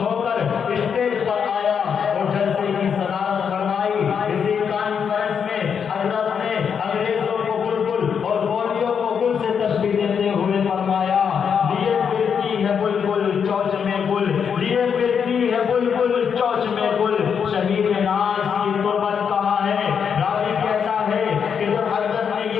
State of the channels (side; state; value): right; quieter; 7.0 dB